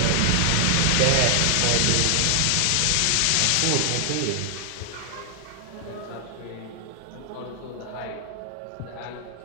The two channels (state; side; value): different; both; correlation 0.00